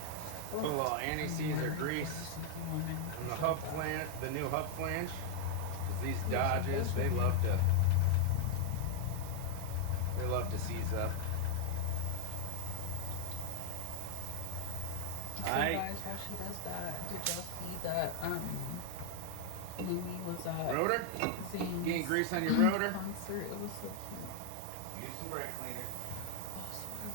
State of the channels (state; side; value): different; both; correlation 0.00